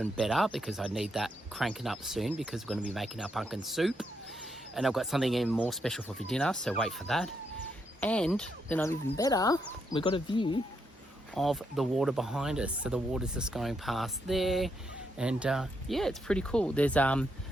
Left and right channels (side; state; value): both; normal; correlation 0.79